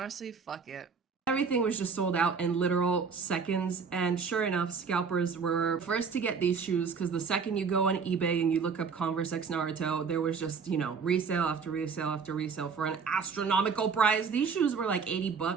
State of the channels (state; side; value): quieter; left; 5.6 dB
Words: fuck it. Everything was just sold out in literal seconds, and sure enough, scalpers were first to get these shoes, because the second you go on eBay and you look up Converse X Naruto, there was just, you know, resale after resale after resale for an astronomical price. These shoes were like 80